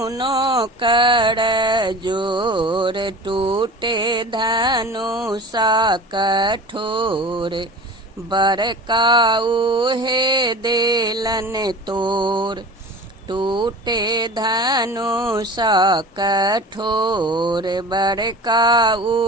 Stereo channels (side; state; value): both; normal; correlation 0.37